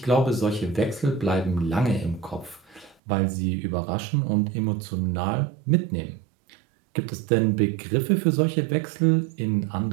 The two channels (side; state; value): left; drops out; at 3.0 s